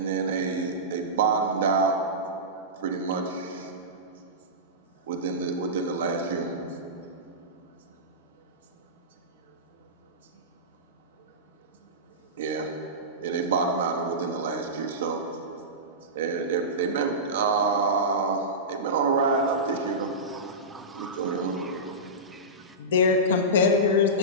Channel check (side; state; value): both; normal; correlation -0.18